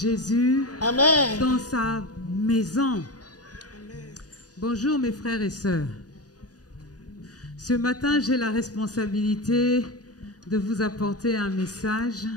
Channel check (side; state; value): right; late; 0.68 ms